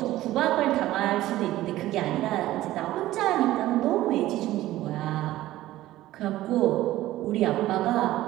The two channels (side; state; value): left; quieter; 15.5 dB